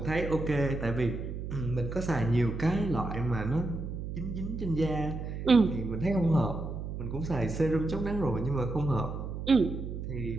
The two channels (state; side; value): noise; right; hum, 6 dB below the sound